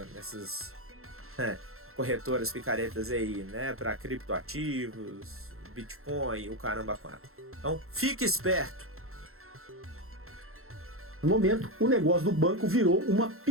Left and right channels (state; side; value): late; left; 0.62 ms